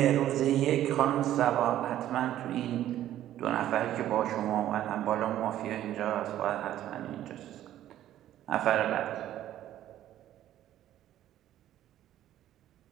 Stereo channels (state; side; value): quieter; left; 12.5 dB